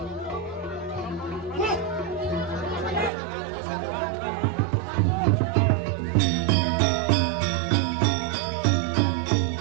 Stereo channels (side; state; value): left; drops out; at 3.1 s